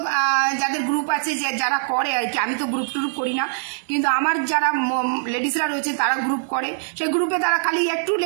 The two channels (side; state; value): left; silent; 57 dB below the other